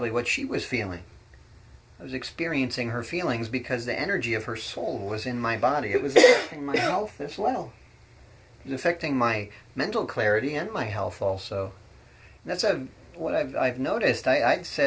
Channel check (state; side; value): identical; both; correlation 1.00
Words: what she was feeling. I was experiencing her feelings because the energy of her soul was in my body. It was affecting my health as well. It was affecting my mental clarity and my health also. And that's what I've noticed. I